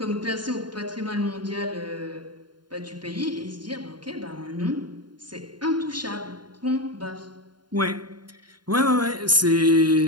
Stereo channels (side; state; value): left; late; 0.71 ms